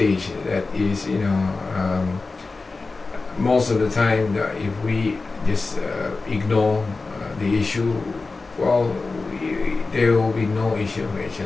that is most of the time that if we just ignore the issue, well, there will be no issue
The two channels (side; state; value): right; quieter; 3.8 dB